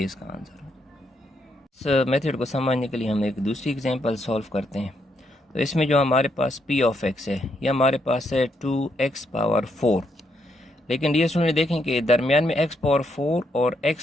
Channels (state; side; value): normal; both; correlation 0.77